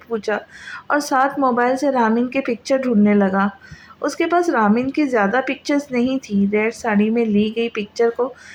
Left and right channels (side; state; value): both; identical; correlation 1.00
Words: پوچھا اور ساتھ موبائل سے رامین کے پکچر ڈھونڈنے لگا۔ اس کے پاس رامین کی زیادہ پکچرز نہیں تھی۔ ریڈ ساڑی میں لی گئی پکچر کو